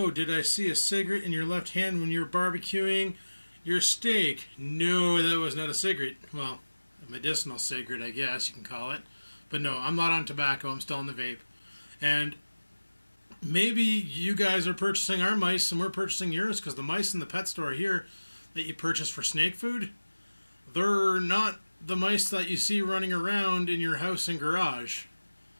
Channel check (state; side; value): inverted; both; correlation -1.00